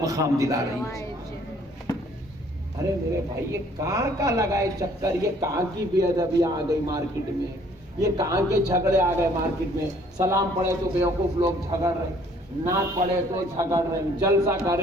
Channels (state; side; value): normal; both; correlation 0.59